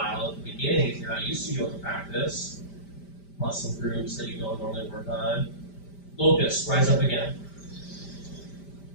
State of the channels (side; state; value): right; late; 5.1 ms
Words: at the beginning if you're not used to yoga practice. Muscle groups that you don't normally work on. Locust, rise up again.